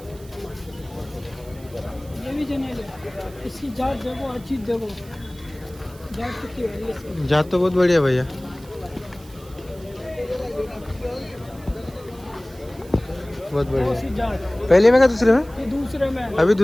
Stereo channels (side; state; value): right; noise; hiss, 24 dB below the sound